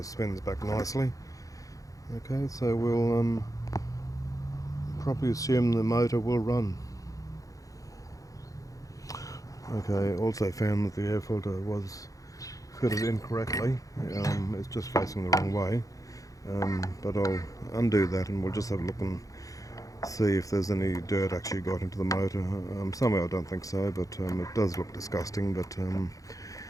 spins back nicely. Okay, so we'll probably assume the motor will run. Okay, also found that the air filter was fitted incorrectly. It's just facing the wrong way. But I'll undo that and we'll just have a look and see if there's any dirt actually got into the motor. Somehow I don't think so, but it does look disgusting, but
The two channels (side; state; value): right; late; 0.17 ms